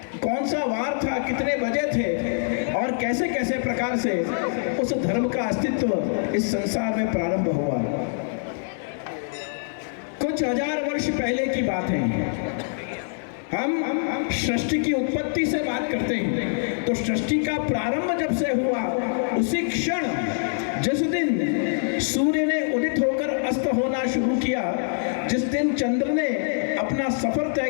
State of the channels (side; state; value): right; silent; digital silence